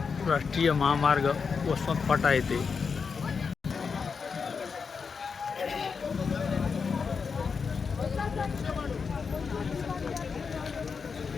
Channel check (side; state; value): right; quieter; 5.5 dB